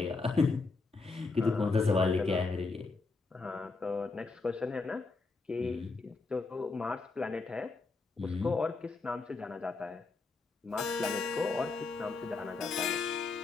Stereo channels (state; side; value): quieter; right; 3.9 dB